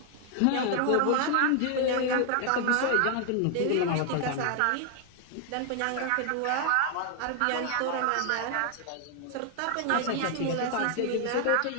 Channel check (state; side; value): different; both; correlation 0.00